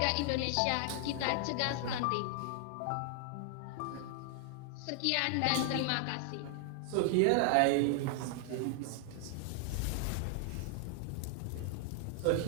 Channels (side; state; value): both; different; correlation 0.00